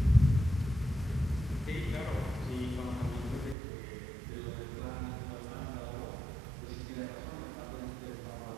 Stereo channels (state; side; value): drops out; left; at 3.6 s